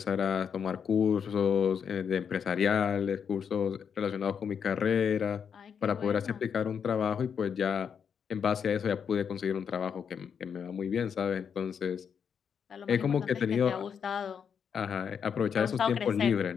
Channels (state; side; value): quieter; right; 7.2 dB